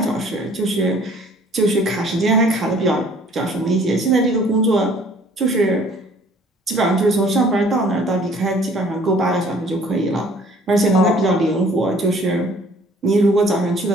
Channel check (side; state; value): both; normal; correlation 0.55